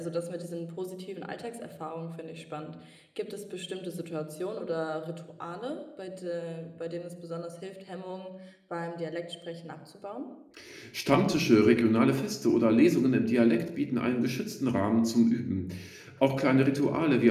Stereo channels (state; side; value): identical; both; correlation 1.00